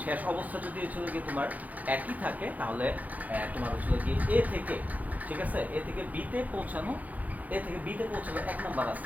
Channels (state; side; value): late; left; 0.078 ms